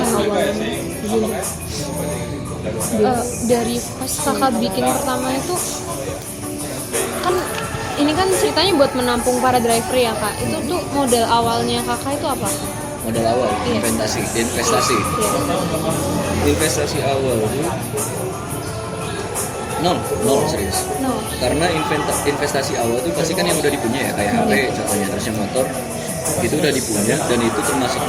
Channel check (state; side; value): identical; both; correlation 1.00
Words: awalnya gini. Dari pas kakak bikin pertama itu kan ini kan ceritanya buat menampung para driver ya kak. Itu tuh modal awalnya kakak itu apa? Modal awal, Iya. investasi Iya. investasi awal tuh nol serius. No. Karena investasi awal tuh pasti kan yang udah dipunya ya, kayak HP contohnya, terus yang motor itu udah dipunya dan itu